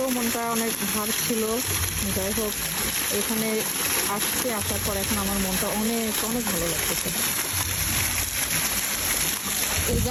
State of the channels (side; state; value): both; identical; correlation 1.00